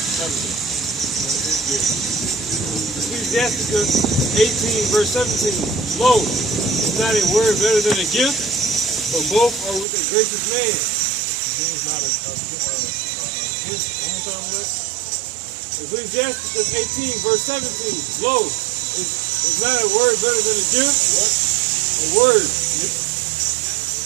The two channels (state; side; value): drops out; left; at 9.9 s